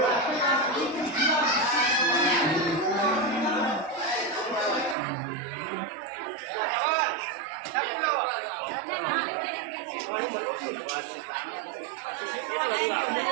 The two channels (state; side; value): drops out; left; at 5.0 s